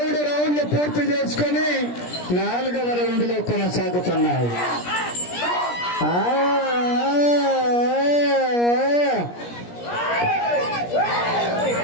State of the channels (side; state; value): right; late; 17 ms